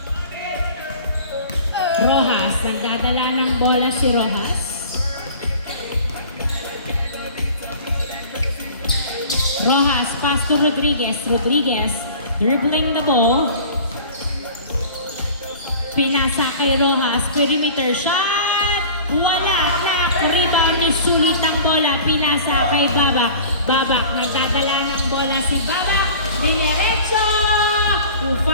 Rojas. Nagdadala ng bola si Rojas. Rojas. Pass to Rodriguez. Rodriguez. Dribbling the ball. Pinasa kay Rojas. Perimeter shot. Wala na. Rebound ni Sulit ang bola. Pinasa kay Babak. Babak. Nagdadala ng bola si Babak. Dinerecho.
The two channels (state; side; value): inverted; both; correlation -0.42